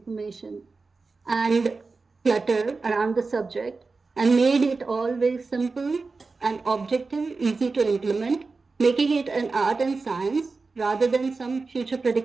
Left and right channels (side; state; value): left; quieter; 4.1 dB